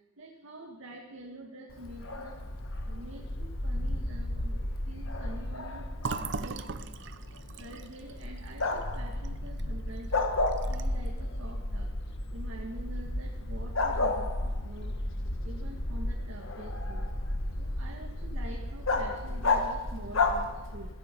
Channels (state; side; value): normal; both; correlation 0.25